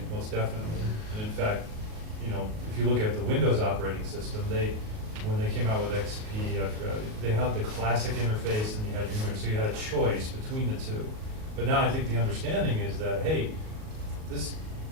most definitely. And in fact, you know, if you look at the Windows operating system, when they came out with XP, they had the classic interface and you had your, so you had a choice between the two. But now I think the understanding is that, hey,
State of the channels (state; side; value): late; left; 38 ms